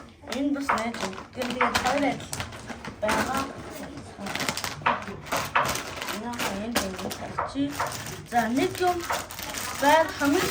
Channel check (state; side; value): identical; both; correlation 1.00